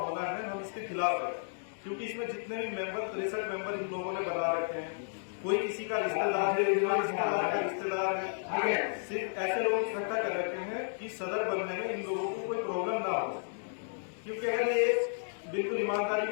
है हम इसके खिलाफ हैं। क्योंकि इसमें जितने भी मेंबर 63 मेंबर इन लोगों ने बना रखे हैं, कोई किसी का रिश्तेदार है, रिश्तेदार का रिश्तेदार है, सिर्फ ऐसे लोग इकट्ठा कर रखे हैं कि सदर बनने में इन लोगों को कोई प्रॉब्लम ना हो। क्योंकि अगर ये बिल्कुल ईमानदारी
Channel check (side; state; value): right; silent; digital silence